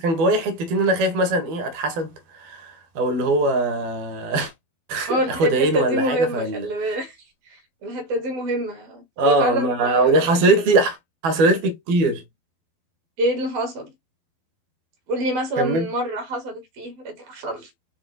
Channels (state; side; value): late; left; 12 ms